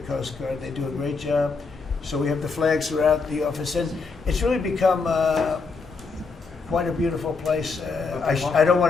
Coast Guard. They do a great job. So we have the flags throughout the office. And it's really become quite a beautiful place. I don't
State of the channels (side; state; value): right; quieter; 4.5 dB